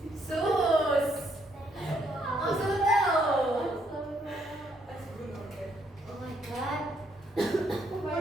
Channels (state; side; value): normal; both; correlation 0.72